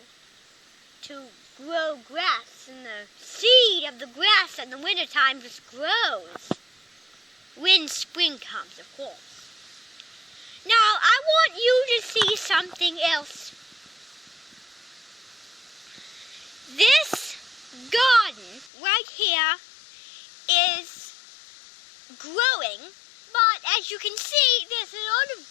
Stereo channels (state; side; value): drops out; right; at 18.7 s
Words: to grow grass, and the seed of the grass in the wintertime just grows when spring comes, of course. Now, I want you to see something else. This garden right here is growing, but as you can see, there's a lot of